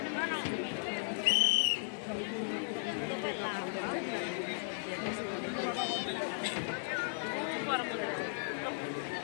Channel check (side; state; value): right; silent; 54 dB below the other